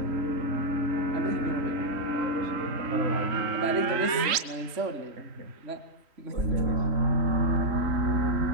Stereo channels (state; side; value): late; left; 3.1 ms